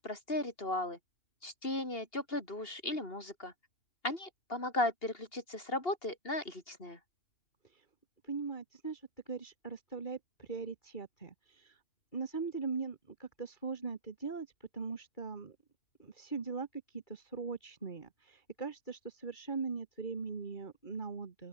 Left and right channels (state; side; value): late; right; 2.8 ms